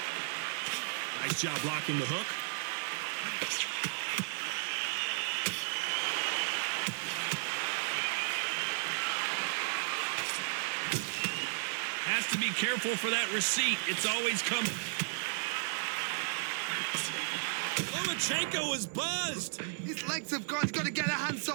Nice job blocking the hook. Has to be careful for that receipt. It's always coming. Lomachenko is buzzed. His legs have gone. He's got to get a hands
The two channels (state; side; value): silent; left; 55 dB below the other